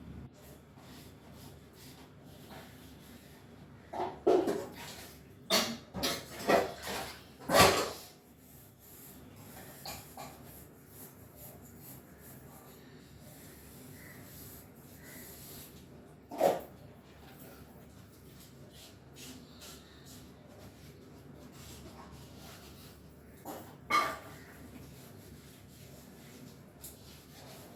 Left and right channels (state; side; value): identical; both; correlation 1.00